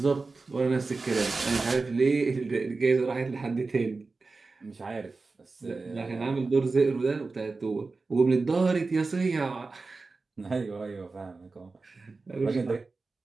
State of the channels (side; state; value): left; quieter; 3.9 dB